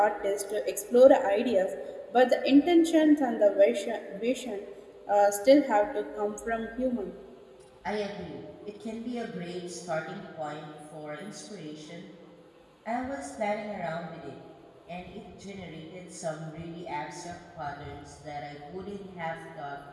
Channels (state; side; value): identical; both; correlation 1.00